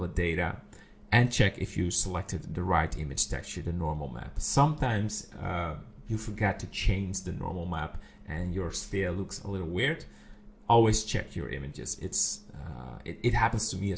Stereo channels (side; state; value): both; identical; correlation 1.00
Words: data, and check if you selected the right image texture, the normal map. Sometimes you forget to change the normal map and your sphere looks a little weird. Always check your images. It happens to me